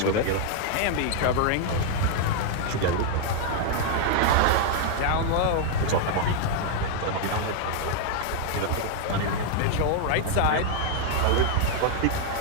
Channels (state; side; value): different; both; correlation 0.00